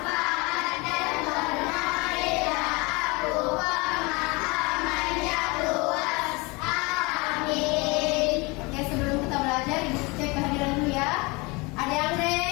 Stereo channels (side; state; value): right; quieter; 26.4 dB